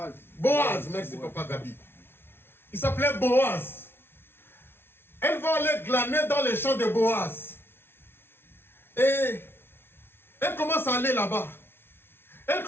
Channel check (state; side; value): late; right; 0.11 ms